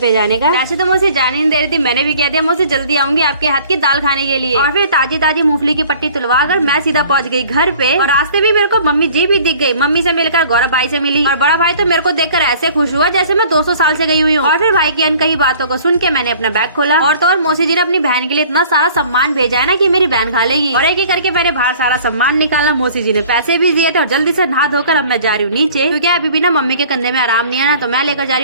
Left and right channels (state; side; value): inverted; both; correlation -0.51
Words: जाने का। वैसे तो मौसी जाने नहीं दे रही थी, मैंने भी कह दिया मौसी जल्दी आऊंगी आपके हाथ की दाल खाने के लिए। और फिर ताजी ताजी मूंगफली की पट्टी तुलवा कर मैं सीधा पहुंच गई घर पे। और रास्ते में मेरे को मम्मी जी भी दिख गई। मम्मी से मिलकर गौरव भाई से मिली और बड़ा भाई तो मेरे को देखकर ऐसे खुश हुआ जैसे मैं 200 साल से गई हुई हूँ। और फिर भाई की अनकही बातों को सुन के मैंने अपना बैग खोला और तो और मौसी जी ने अपनी बहन के लिए इतना सारा सम्मान भेजा है ना कि मेरी बहन खा लेगी। और एक एक करके मैंने बाहर सारा सम्मान निकाला। मौसी जी ने पैसे भी दिए थे और जल्दी से नहा धोकर अब मैं जा रही हूँ नीचे, क्योंकि अभी भी ना मम्मी के कंधे में आराम नहीं है ना, तो मैं लेकर जा रही